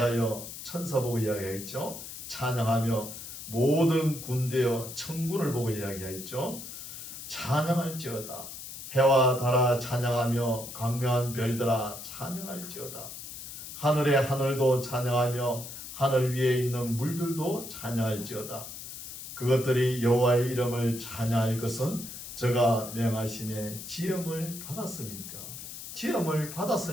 천사 보고 이야기했죠. 찬양하며 모든 군대여, 천군을 보고 이야기했죠. 찬양할지어다. 해와 달아 찬양하며 광명한 별들아 찬양할지어다. 하늘의 하늘도 찬양하며 하늘 위에 있는 물들도 찬양할지어다. 그것들이 여호와의 이름을 찬양할 것은 저가 명하심에 지음을 받았습니까? 지음을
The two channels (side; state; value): left; noise; hiss, 11 dB below the sound